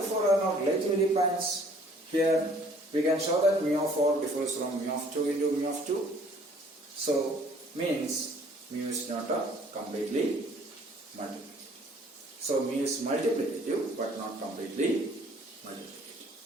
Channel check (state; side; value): normal; both; correlation 0.57